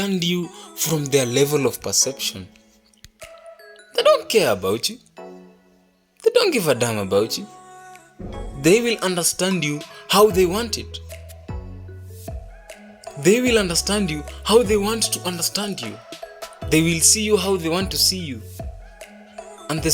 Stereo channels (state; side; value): identical; both; correlation 1.00